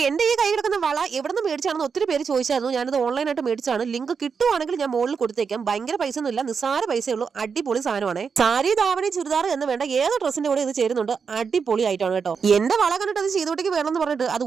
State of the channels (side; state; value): left; quieter; 5.9 dB